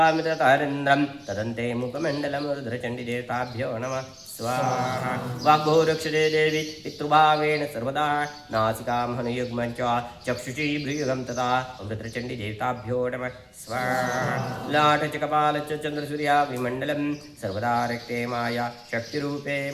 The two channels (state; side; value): identical; both; correlation 1.00